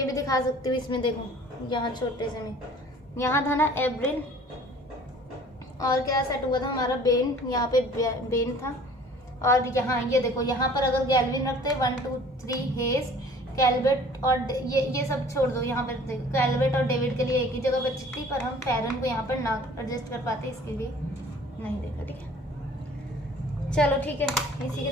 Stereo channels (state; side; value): normal; both; correlation 0.50